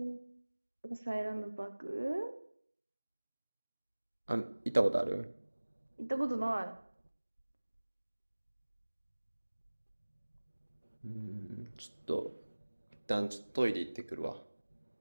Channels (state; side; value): inverted; both; correlation -1.00